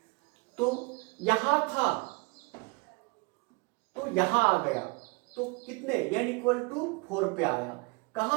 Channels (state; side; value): quieter; left; 30.1 dB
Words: तो यहां था तो यहां आ गया, तो कितने, n इक्वल टू 4 पे आया,